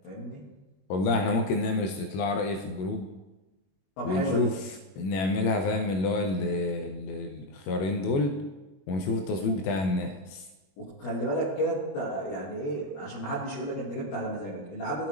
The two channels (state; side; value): late; right; 21 ms